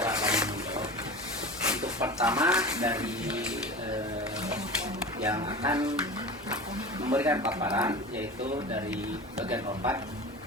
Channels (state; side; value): normal; both; correlation 0.32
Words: kami. Untuk pertama dari yang akan memberikan paparan yaitu dari bagian opat.